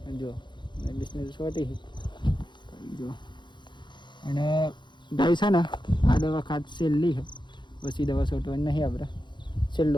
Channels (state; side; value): late; right; 0.22 ms